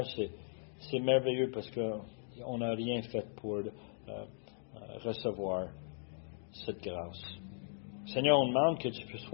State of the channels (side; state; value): right; silent; digital silence